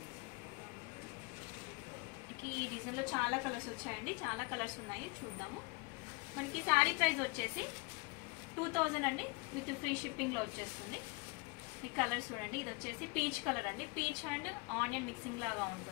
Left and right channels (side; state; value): right; quieter; 28.5 dB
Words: ఈ డిజైన్ లో చాలా కలర్స్ వచ్చాయండి, చాలా కలర్స్ ఉన్నాయి, చూద్దాము. మనకి శారీ ప్రైస్ వచ్చేసి 2000 అండి, విత్ ఫ్రీ షిప్పింగ్ లో వచ్చేస్తుంది. ఈ కలర్ చూడండి, ఇది వచ్చేసి పీచ్ కలర్ అండి. పీచ్ అండ్ ఆనియన్ మిక్సింగ్ లాగా